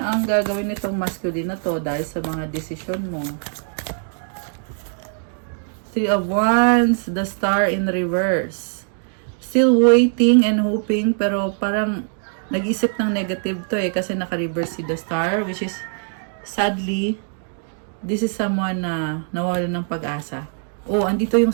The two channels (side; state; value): left; silent; 58 dB below the other